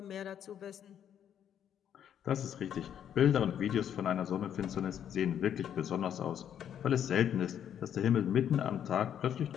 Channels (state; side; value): quieter; right; 9.4 dB